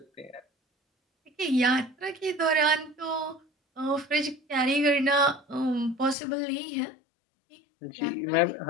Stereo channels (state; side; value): drops out; right; at 6.2 s